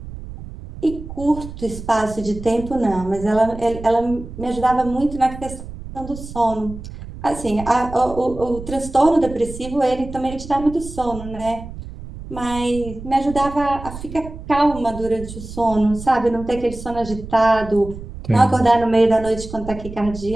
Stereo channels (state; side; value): noise; right; rumble, 12 dB below the sound